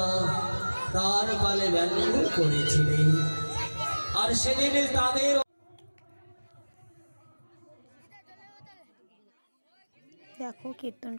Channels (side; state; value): both; inverted; correlation -1.00